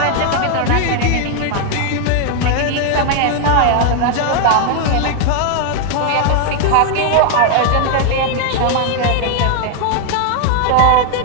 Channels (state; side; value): different; both; correlation 0.00